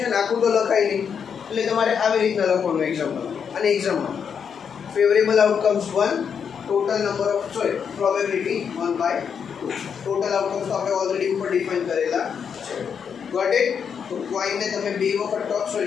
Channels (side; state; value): right; quieter; 7.0 dB